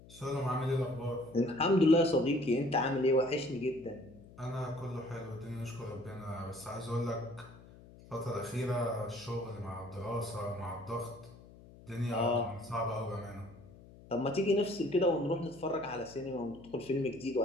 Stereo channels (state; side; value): noise; left; hum, 20 dB below the sound